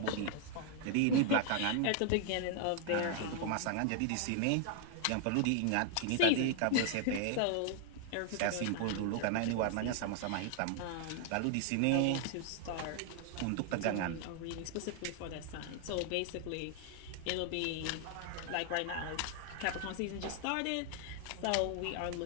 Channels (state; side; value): different; both; correlation 0.00